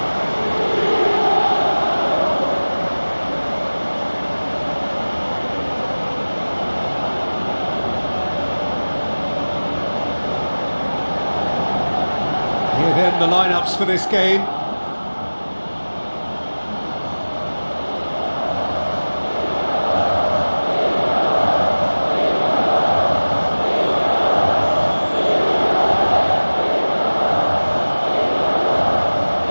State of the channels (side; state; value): both; inverted; correlation -1.00